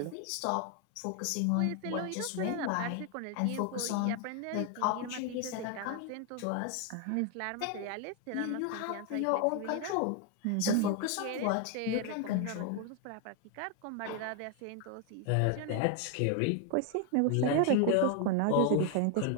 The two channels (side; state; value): both; different; correlation 0.01